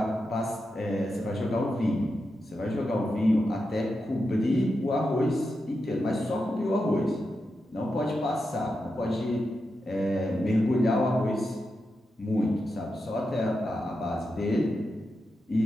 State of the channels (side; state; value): both; normal; correlation 0.88